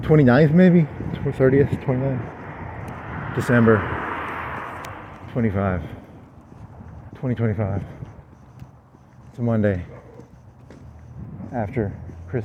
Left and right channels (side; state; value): both; identical; correlation 1.00